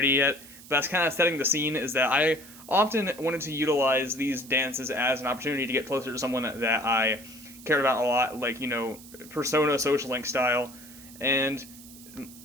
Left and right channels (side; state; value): right; noise; hiss, 19 dB below the sound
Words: yet, but that's kind of setting the scene. Is that I often wanted to utilize these dances as an opportunity to get closer to someone that I cared about a lot, persona social link style, and